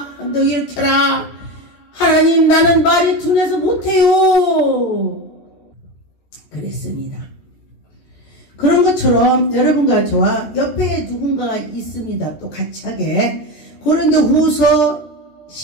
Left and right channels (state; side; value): late; right; 14 ms